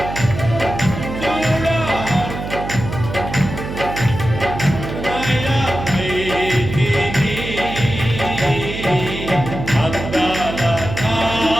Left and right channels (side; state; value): right; noise; hum, 7 dB below the sound